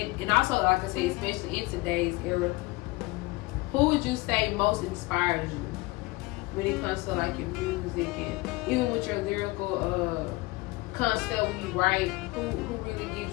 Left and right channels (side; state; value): right; quieter; 22.4 dB